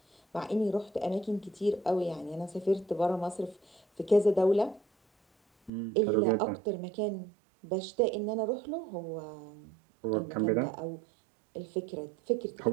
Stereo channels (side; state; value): left; drops out; at 5.7 s